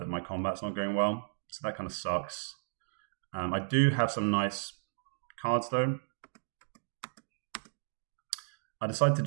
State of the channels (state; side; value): silent; left; digital silence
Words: my combat's not going well. So that kind of sucks. I do have some nice cards though. I decided to